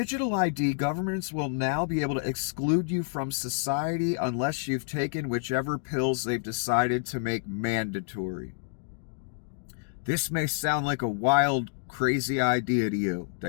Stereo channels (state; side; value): silent; right; 57 dB below the other